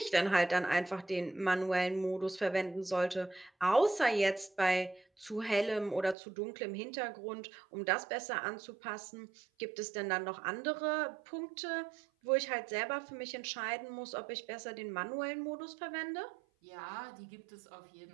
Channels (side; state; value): left; drops out; at 6.2 s